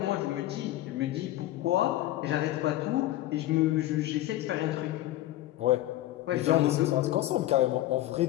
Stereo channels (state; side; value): quieter; right; 15.1 dB